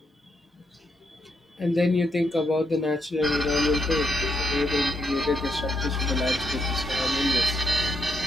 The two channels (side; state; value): both; normal; correlation 0.80